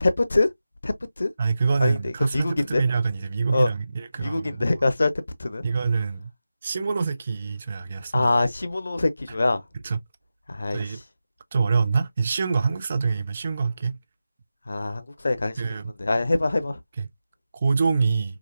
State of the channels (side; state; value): both; inverted; correlation -0.91